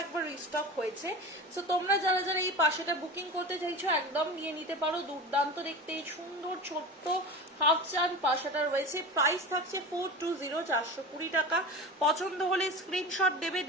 একবার রিস্টক হয়েছে। সো তোমরা যারা যারা এই পাশাটা বুকিং করতে চাইছো একদম নিয়ে নিতে পারো, দুর্দান্ত দেখতে এই সুন্দর ছোট্ট হাফ চান পাশাটা রয়েছে। প্রাইস থাকছে 420, 420 টাকা। পছন্দ হলে স্ক্রিনশট দেবে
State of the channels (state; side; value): normal; both; correlation 0.30